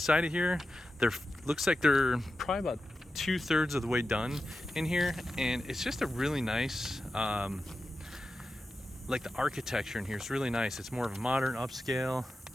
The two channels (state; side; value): normal; both; correlation 0.91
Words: of here. Looks like they're probably about 2/3 of the way done in here, and it's just a really nice like the architecture in here is really nice. It's more of a modern upscale.